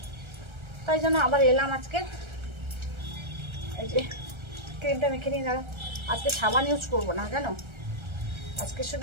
তাই জন্য আবার এলাম আজকে। এই যে ক্রিমটা মেখে নিয়ে দাঁড়া। আজকে সাবান ইউজ করবো না জানো, আজকে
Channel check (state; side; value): late; left; 1.3 ms